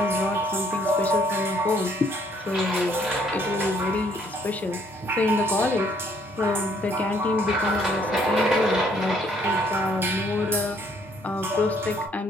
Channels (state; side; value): normal; both; correlation 0.66